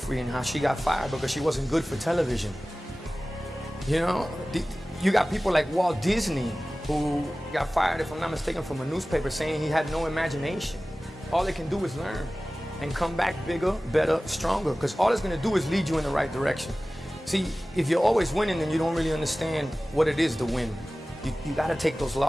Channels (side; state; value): both; normal; correlation 0.97